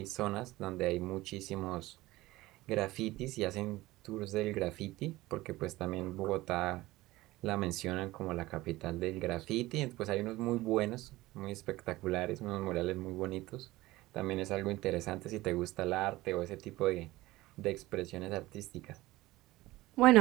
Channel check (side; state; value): left; quieter; 18.5 dB